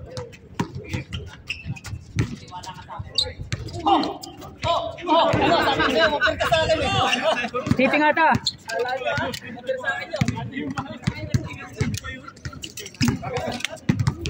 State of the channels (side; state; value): both; identical; correlation 1.00